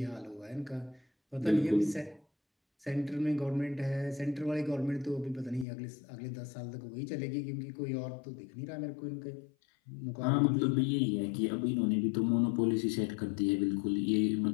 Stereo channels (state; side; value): drops out; right; at 5.7 s